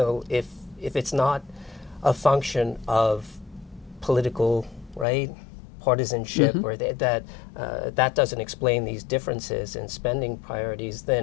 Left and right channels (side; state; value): right; drops out; at 5.1 s